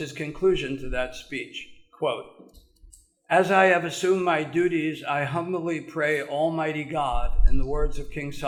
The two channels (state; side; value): identical; both; correlation 1.00